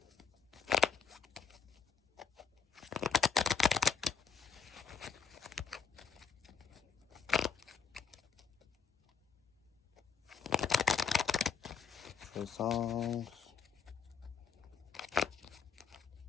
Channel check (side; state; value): right; quieter; 6.4 dB